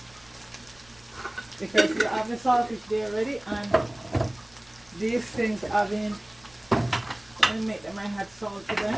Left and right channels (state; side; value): noise; right; rumble, 28 dB below the sound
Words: because you have the saltfish there already, and these things have been, I make them, I had salt to